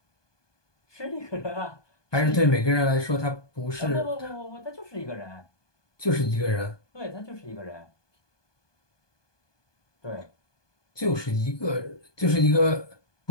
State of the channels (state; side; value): late; right; 1.2 ms